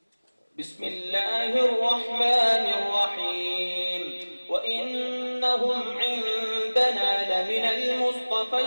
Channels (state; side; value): inverted; both; correlation -1.00